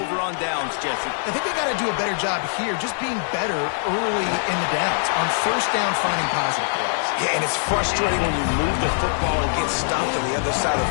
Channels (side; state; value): right; silent; 64 dB below the other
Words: on downs, Jesse. I think they got to do a better job here, just being better early in the downs. On first down, finding positive plays. Yeah, and it's frustrating when you move the football and get stopped on the other side of